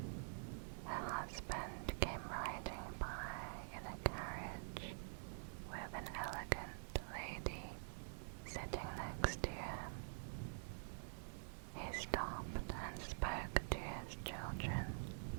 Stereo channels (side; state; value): left; silent; digital silence